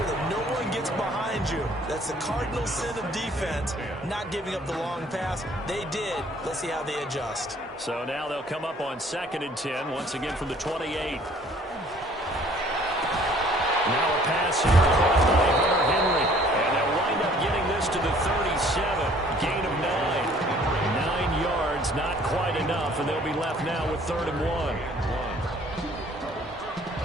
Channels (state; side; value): normal; both; correlation 0.56